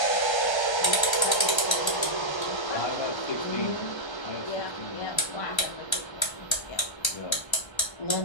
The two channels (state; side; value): late; right; 1.3 ms